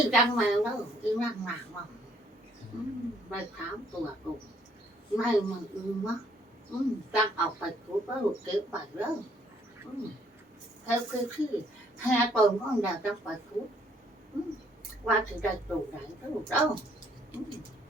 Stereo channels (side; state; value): both; normal; correlation 0.65